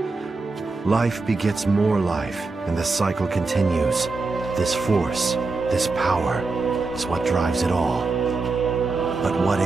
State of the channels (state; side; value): quieter; left; 3.8 dB